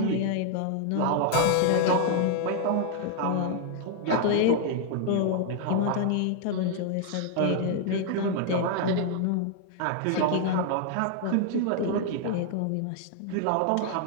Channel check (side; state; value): both; different; correlation 0.00